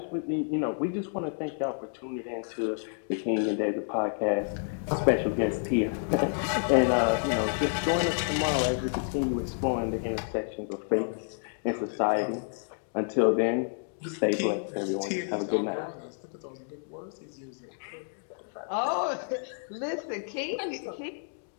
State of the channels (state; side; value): silent; right; digital silence